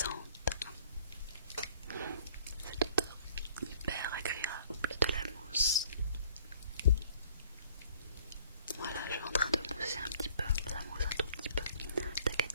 Cette odeur hyper agréable de la mousse. Voilà, je suis en train de mousser un petit peu, ça mousse un tout petit peu,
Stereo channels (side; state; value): both; inverted; correlation -0.56